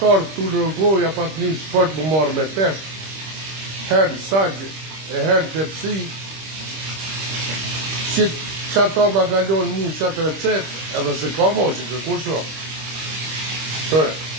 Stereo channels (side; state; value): left; late; 26 ms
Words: të në rëgohë, ja pas një sport më marrë me peshë. Herë sajgjë, e herë të pësi, që ato ma galonë mu qatë recept, edhe se ka mo që të kur shumë. Tërë.